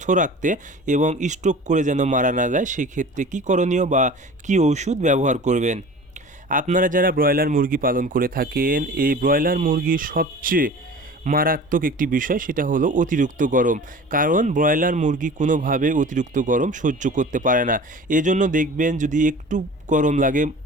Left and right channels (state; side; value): normal; both; correlation 0.40